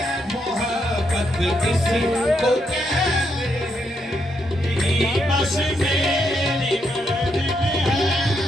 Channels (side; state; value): both; normal; correlation 0.79